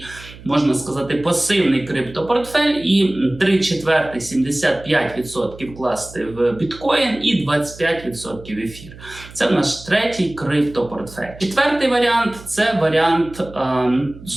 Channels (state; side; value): noise; right; hum, 18 dB below the sound